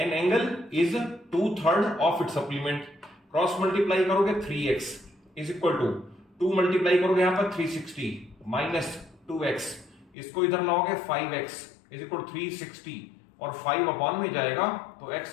angle is 2/3 of its supplement. Cross multiply करोगे 3x is equal to 2 multiply करोगे यहां पर 360 माइनस 2x, इसको इधर लाओगे 5x इज इक्वल 360 और 5 अपॉन में जाएगा तो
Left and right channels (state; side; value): drops out; right; at 10.1 s